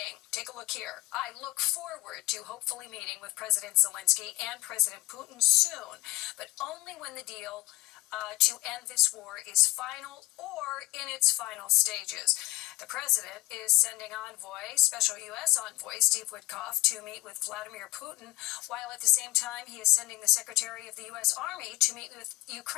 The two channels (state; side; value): quieter; right; 18.8 dB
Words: take a look here, I look forward to hopefully meeting with President Zelensky and President Putin soon, but only when the deal to end this war is final or in its final stages. The president is sending special U.S. envoy Steve Witkoff to meet with Vladimir Putin, while at the same time he is sending the Secretary of the U.S. Army to meet with